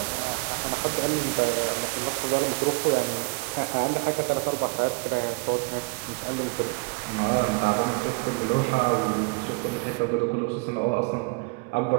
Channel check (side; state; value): left; quieter; 32.0 dB